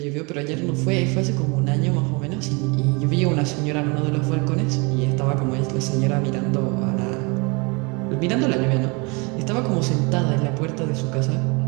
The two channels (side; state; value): left; quieter; 29.5 dB